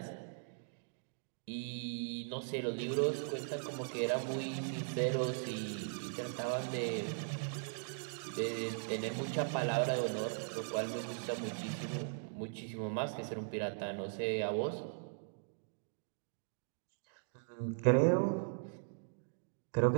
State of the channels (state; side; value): silent; left; digital silence